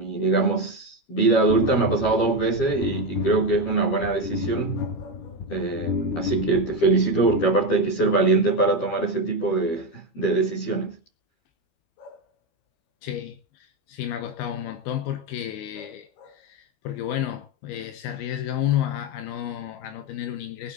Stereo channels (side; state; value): right; late; 12 ms